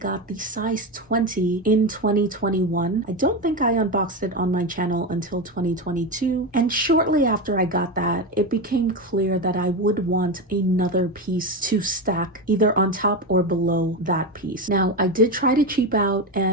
the size 20 in 2021. I don't think I unboxed it on my channel until 2022. And shortly after I got that, it became clear that I would want another piece to stack either on top or below that piece. Now, I did try to cheap out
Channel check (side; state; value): both; normal; correlation 0.16